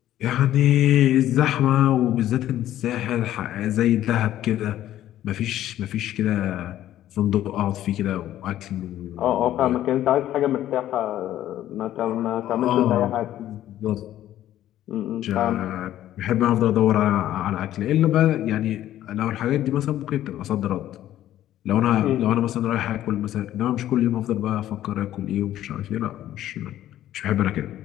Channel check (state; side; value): quieter; right; 12.8 dB